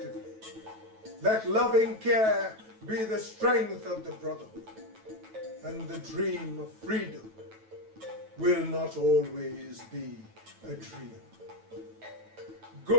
Let loving care be the strength of the brotherhood. And the dream of freedom will not always be a dream.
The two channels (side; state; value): left; late; 9.2 ms